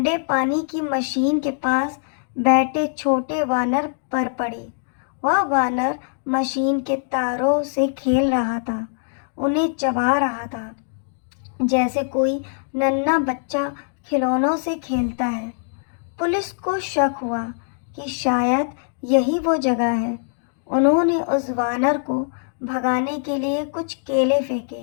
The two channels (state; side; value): silent; right; digital silence